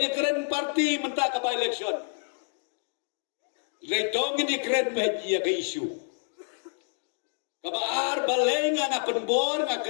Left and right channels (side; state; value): right; silent; 59 dB below the other